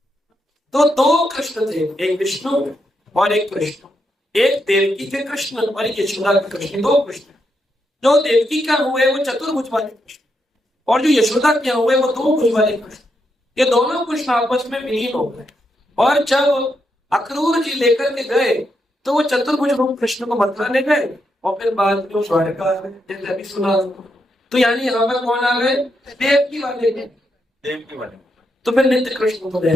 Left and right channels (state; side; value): normal; both; correlation 0.81